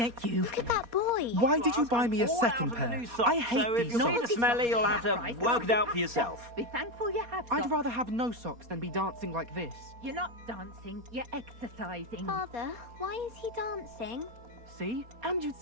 at you. Look at that boy. Why did you buy me a second pair? I hate so these if you see the socks. smelly, you'll have to work it out for yourself. Be thankful you have I'd socks. rather have no socks than be dancing like this. You're not dancing, you're exercising. Father, why is he dancing? See? And you'd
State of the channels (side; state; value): left; late; 4.2 ms